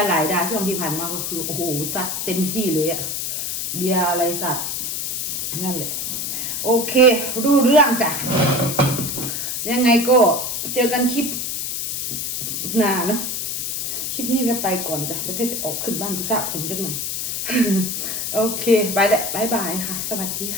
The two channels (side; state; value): left; noise; hiss, 2 dB below the sound